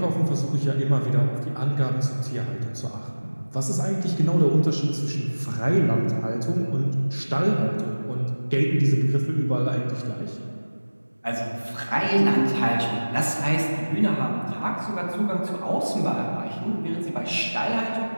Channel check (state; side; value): inverted; both; correlation -1.00